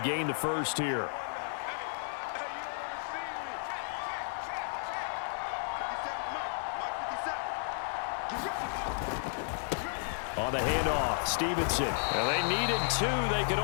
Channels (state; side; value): silent; right; digital silence